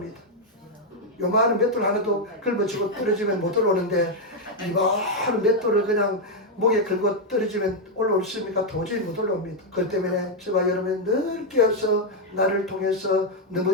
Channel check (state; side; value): normal; both; correlation 0.01